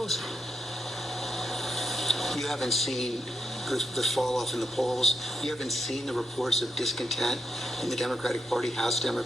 You haven't seen the fall off in the polls. You haven't seen the reports of discontent in the Democratic Party, House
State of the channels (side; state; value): both; normal; correlation 0.82